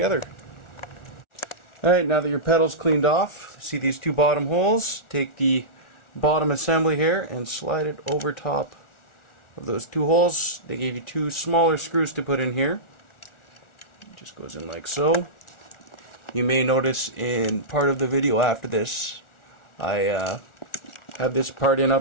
Alright, now that your pedal's cleaned off, see these two bottom holes? Take the bottom assembly here and slide it over top of those two holes. They gave you two smaller screws to put in here. It just goes in like so. You may notice in part of the video after this, I have this part in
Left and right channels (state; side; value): late; right; 1.4 ms